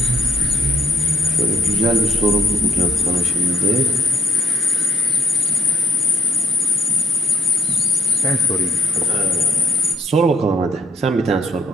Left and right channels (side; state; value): both; normal; correlation 0.66